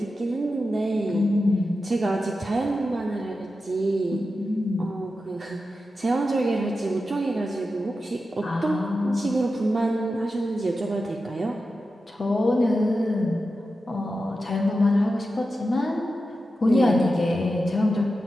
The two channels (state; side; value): normal; both; correlation 0.91